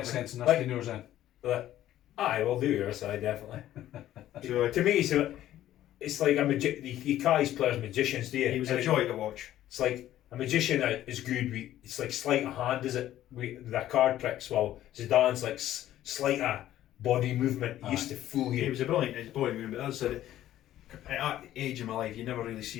Sense in this Like- yours in. Aye, we'll do yours, aye, definitely. So To me, it's like you call these players magicians, do you? he was a joy to watch. It's like a magician is good. It's like sleight of hand, is it? Their card tricks. Well, Zidane's like sleight of body movement. He used to fool He you. was a brilliant movement, but as I said, at that age of my life, you never really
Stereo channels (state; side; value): quieter; right; 13.0 dB